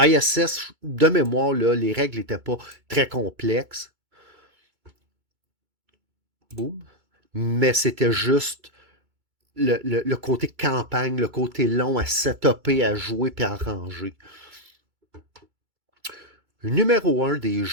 de mémoire, là, les règles n'étaient pas très complexes. Boum. Mais c'était juste le côté campagne, le côté long à setuper, à jouer puis à ranger. Numéro un des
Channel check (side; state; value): left; late; 2.3 ms